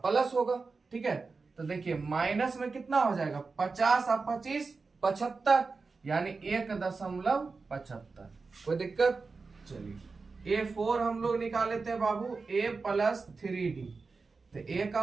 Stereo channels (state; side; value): quieter; left; 4.3 dB